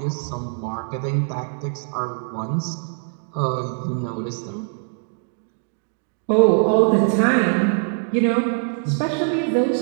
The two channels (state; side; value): silent; left; 61 dB below the other